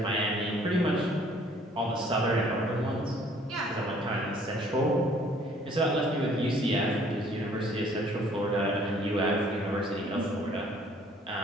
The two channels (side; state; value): both; normal; correlation 0.58